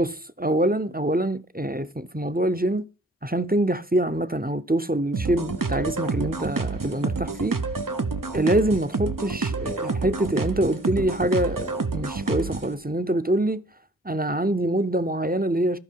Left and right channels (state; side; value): normal; both; correlation 0.55